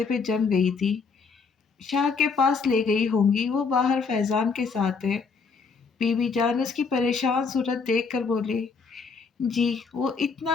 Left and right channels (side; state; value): right; quieter; 5.0 dB